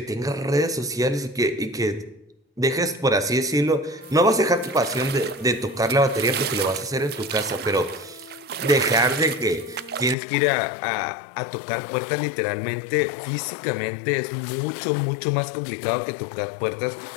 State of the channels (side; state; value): right; drops out; at 10.2 s